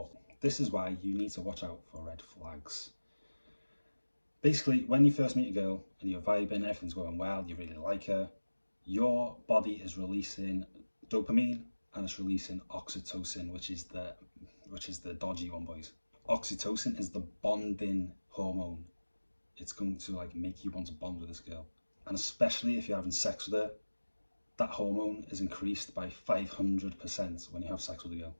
This is why you need to watch out for red flags. Basically, when you first meet a girl and you're vibing, everything's going well, you really like her, your body is releasing dopamine and it's releasing oxytocin, which is the dodgy one, boys. Oxytocin is the bonding hormone. It's going to like make you want to bond with this girl, and especially if you're having sex with her, that hormone is increased by 500% when you have sex with a girl.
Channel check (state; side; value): inverted; both; correlation -1.00